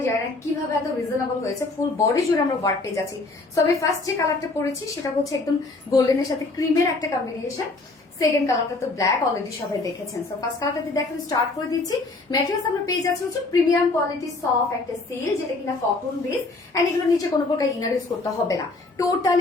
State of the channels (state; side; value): quieter; right; 3.3 dB